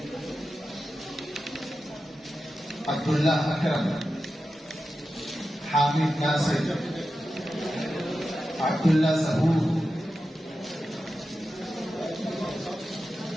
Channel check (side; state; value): both; normal; correlation 0.92